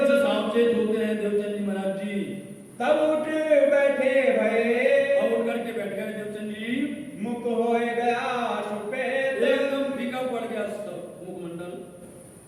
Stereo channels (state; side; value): identical; both; correlation 1.00